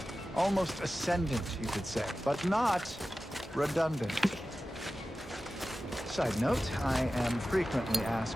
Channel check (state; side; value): normal; both; correlation 0.94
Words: almost ascendant, you could say, but not redundant. Side note, I am frequently